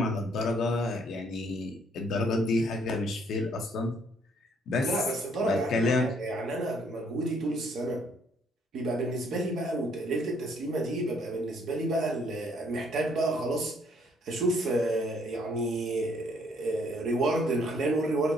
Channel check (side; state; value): both; normal; correlation 0.66